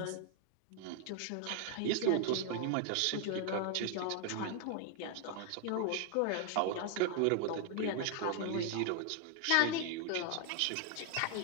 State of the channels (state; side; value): different; both; correlation 0.00